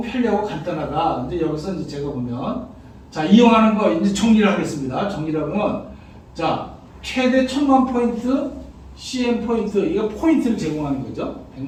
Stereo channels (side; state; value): both; identical; correlation 1.00